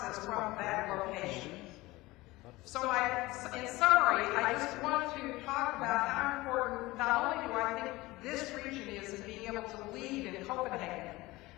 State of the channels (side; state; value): right; quieter; 20.0 dB